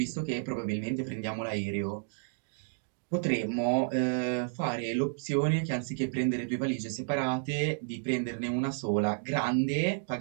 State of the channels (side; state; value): left; silent; digital silence